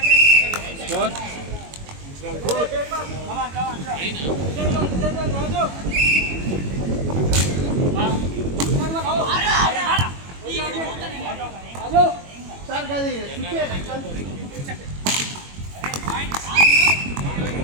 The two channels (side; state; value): left; late; 21 ms